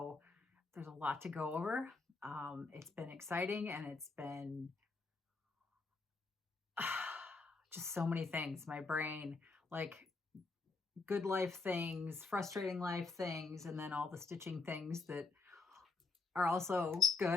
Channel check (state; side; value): quieter; right; 3.9 dB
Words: there's a lot to go over. It's been exciting and it's been just so many things. My brain, like good life things, frustrating life things, and then all the stitching things that are also